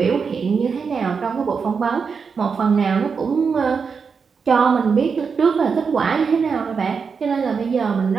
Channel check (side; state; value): left; quieter; 5.7 dB